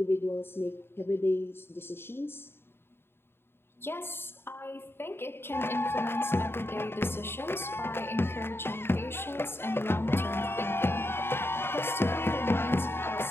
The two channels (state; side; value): late; right; 0.11 ms